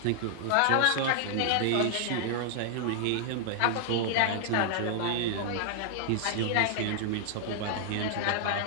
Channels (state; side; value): different; both; correlation -0.01